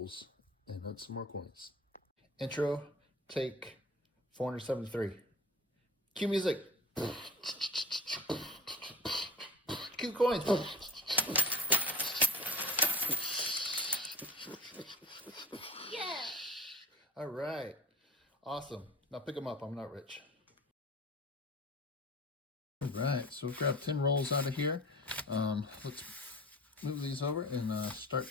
and add some more coins. Intro, take 473. Cue music. Cue coins. Yeah. All right. Awesome. Now pick them up. I'm not rich. All right. So we've grabbed 10 rolls out of here. Let's move these over and start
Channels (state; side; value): normal; both; correlation 0.39